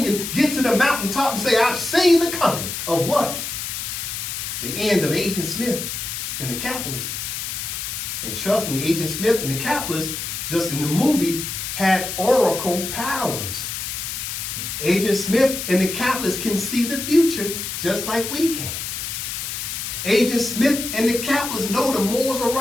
and get to the mountaintop and say, I've seen the coming of what? The end of Agent Smith and the capitalist. And trust me, Agent Smith and the capitalist, just in the movie, had oracle powers. Agent Smith and the capitalist can see the future just like we can. Agent Smith and the capitalists know the Moors are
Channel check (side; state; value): left; noise; hiss, 5 dB below the sound